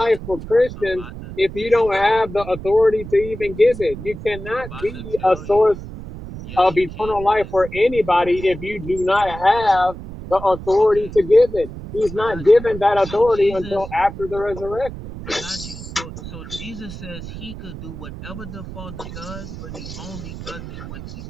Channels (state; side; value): noise; right; rumble, 11 dB below the sound